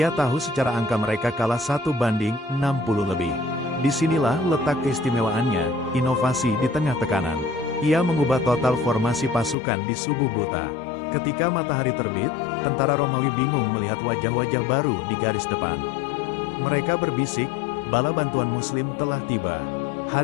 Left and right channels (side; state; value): right; drops out; at 9.6 s